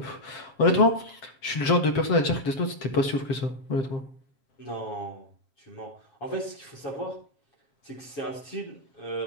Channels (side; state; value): right; late; 7.6 ms